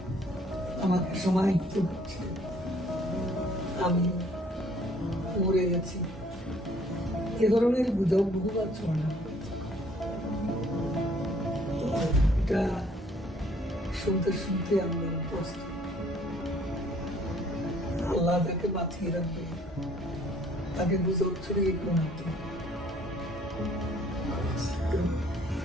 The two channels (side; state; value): both; normal; correlation 0.60